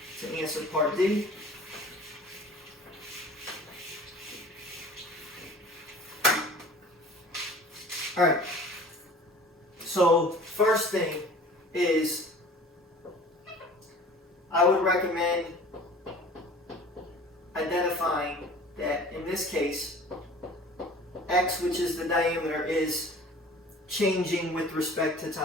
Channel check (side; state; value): both; normal; correlation 0.45